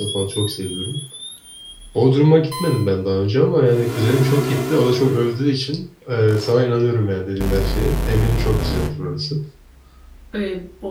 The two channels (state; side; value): identical; both; correlation 1.00